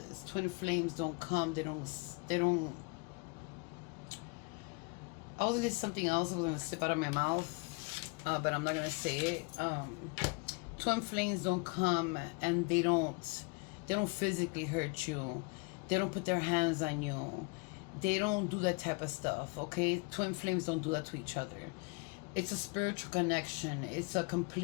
Twin flames don't come. They don't. I was going to say something else. I was going to slip out of my mouth, but I'm not going to say it. Twin flames don't come and they don't physically hurt you. They don't put their hands on you. They don't do that type of stuff, okay? Twin flames don't do that to each other. It's a spiritual connection. It's a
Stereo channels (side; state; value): right; quieter; 31.3 dB